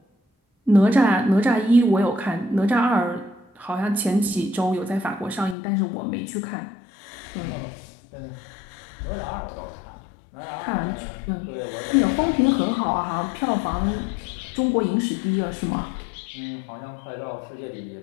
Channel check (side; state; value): right; drops out; at 5.6 s